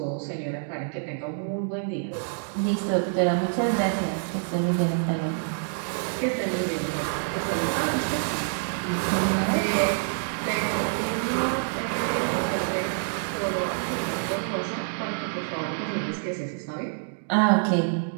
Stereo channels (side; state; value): left; silent; digital silence